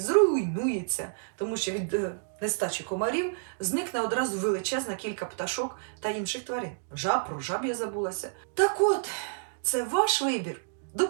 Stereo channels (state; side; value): silent; left; digital silence